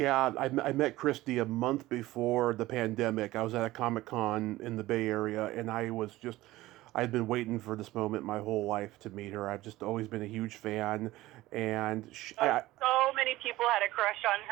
I met Christy a month before the pandemic. I was at a Comic-Con in the Bay Area, and I'd been waiting for this moment my whole life to meet her. I've just always been a huge fan, and so many people had a crush on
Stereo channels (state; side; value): quieter; left; 17.4 dB